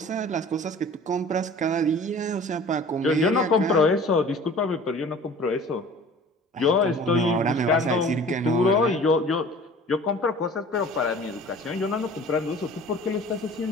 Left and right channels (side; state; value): both; normal; correlation 0.45